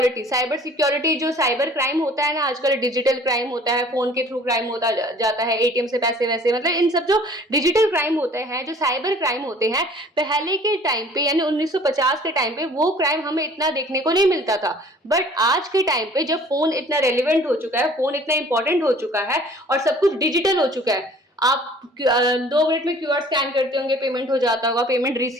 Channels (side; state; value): both; normal; correlation 0.51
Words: जो साइबर क्राइम होता है ना, आजकल डिजिटल क्राइम होता है, फोन के थ्रू क्राइम होता जाता है, एटीएम से पैसे वैसे, मतलब इन सब जो डिजिटल क्राइम होते हैं, जो साइबर क्राइम होते हैं, पहले के टाइम पे यानी 1950 के टाइम पे वो क्राइम हमें इतना देखने को नहीं मिलता था। बट आज के टाइम पे जब फोन इतना रेलिवेंट हो चुका है, फोन इतना इंपॉर्टेंट हो चुका है और सब कुछ डिजिटल हो चुका है, आप 2 मिनट में क्यूआर स्कैन करते होंगे, पेमेंट हो जाता होगा, पेमेंट